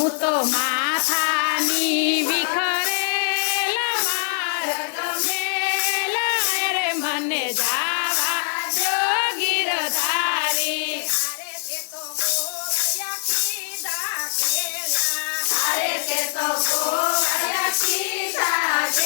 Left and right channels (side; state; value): right; silent; 64 dB below the other